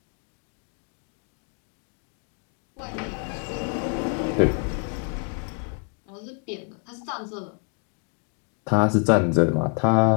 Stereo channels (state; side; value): quieter; right; 38.5 dB